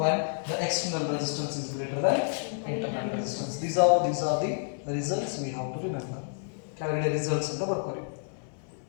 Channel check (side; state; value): right; silent; digital silence